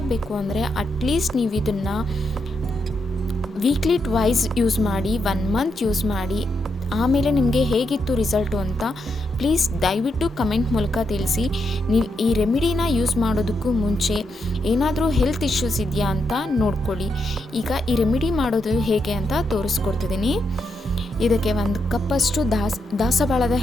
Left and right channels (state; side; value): normal; both; correlation 0.82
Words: ಅಂದರೆ ಅಟ್ಲೀಸ್ಟ್ ನೀವು ಇದನ್ನು ವೀಕ್ಲಿ ಟ್ವೈಸ್ ಯೂಸ್ ಮಾಡಿ, 1 ಮಂತ್ ಯೂಸ್ ಮಾಡಿ, ಆಮೇಲೆ ನಿಮಗೆ ಹೇಗಿತ್ತು ರಿಸಲ್ಟು ಅಂತ ಪ್ಲೀಸ್ ದಯವಿಟ್ಟು ಕಮೆಂಟ್ ಮೂಲಕ ತಿಳಿಸಿ. ನೀವು ಈ ರೆಮಿಡಿನ ಯೂಸ್ ಮಾಡೋದಕ್ಕೂ ಮುಂಚೆ ಏನಾದರೂ ಹೆಲ್ತ್ ಇಶ್ಯೂಸ್ ಇದೆಯಾ ಅಂತ ನೋಡ್ಕೊಳ್ಳಿ. ಈಗ ಈ ರೆಮಿಡಿ ಮಾಡೋದು ಹೇಗೆ ಅಂತ ತೋರಿಸ್ಕೊಡ್ತಿದ್ದೀನಿ. ಇದಕ್ಕೆ 1 ಕಪ್ಪಷ್ಟು ದಾಸವಾಳದ